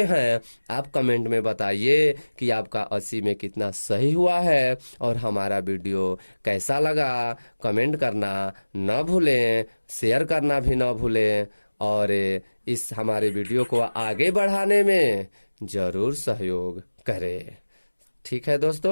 हैं। आप कमेंट में बताइए कि आपका 80 में कितना सही हुआ है और हमारा वीडियो कैसा लगा। कमेंट करना न भूलें, शेयर करना भी न भूलें और इस हमारे वीडियो को आगे बढ़ाने में जरूर सहयोग करें। ठीक है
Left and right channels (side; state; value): both; inverted; correlation -1.00